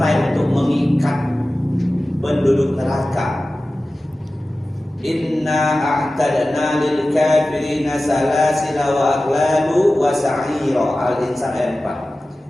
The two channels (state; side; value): normal; both; correlation 0.96